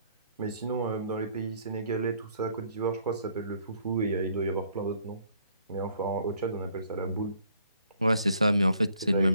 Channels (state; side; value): inverted; both; correlation -0.64